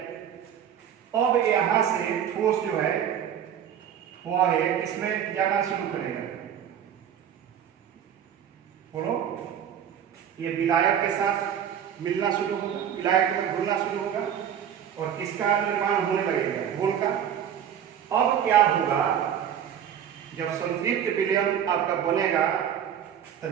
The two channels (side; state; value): left; quieter; 9.2 dB